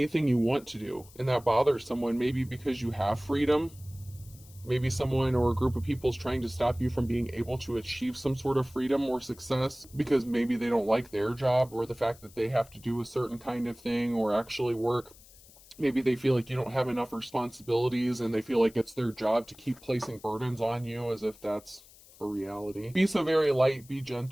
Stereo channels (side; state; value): left; noise; hiss, 23 dB below the sound